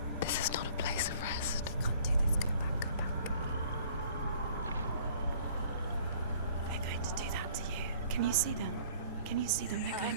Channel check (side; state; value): both; inverted; correlation -0.53